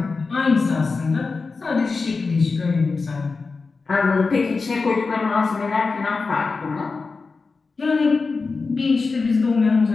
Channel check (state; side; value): quieter; right; 4.3 dB